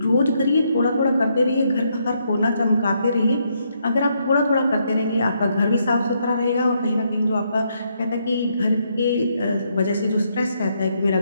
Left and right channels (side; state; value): both; inverted; correlation -0.76